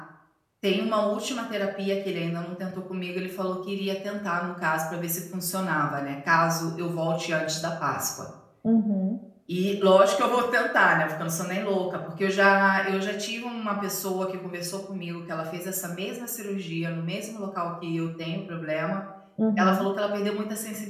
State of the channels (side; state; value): both; identical; correlation 1.00